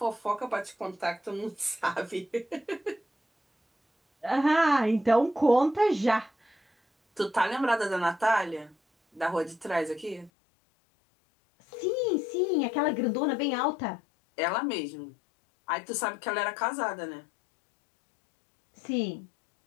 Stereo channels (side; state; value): right; drops out; at 10.3 s